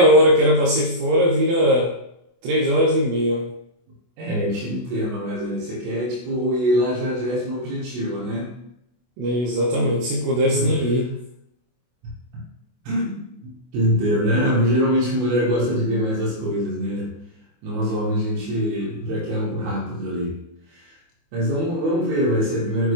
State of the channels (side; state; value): left; late; 24 ms